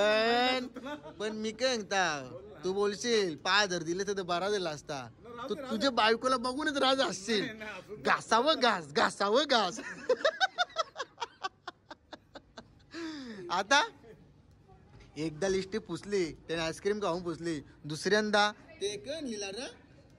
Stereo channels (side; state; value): both; identical; correlation 1.00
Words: पण मी काय सांगता, तू बोलशील 5000 दिले तर बरा दिला असता. तू तुझ्या बायकोला बघूनच राज असशील. घासावं घास. आता एकदा लिस्टी पुसली, त्याने आईस्क्रीम खाऊन पुसली. दुसऱ्यांदा ते कण लिहिला ना,